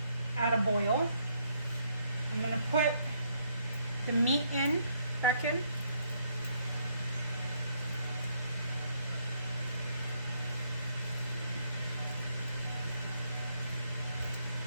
at a boil. I'm gonna put the meat back in.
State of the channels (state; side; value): inverted; both; correlation -0.71